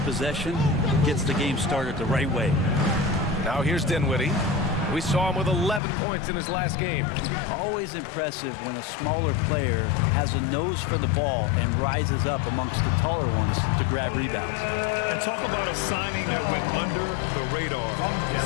Gets the game started the right way. Now here's Dinwiddie. We saw him with 11 points in his last game. Always impressive when a smaller player has a nose for the ball and rises up amongst the taller ones to grab rebounds. And talk about a signing that went under the radar.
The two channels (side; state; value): right; drops out; at 5.8 s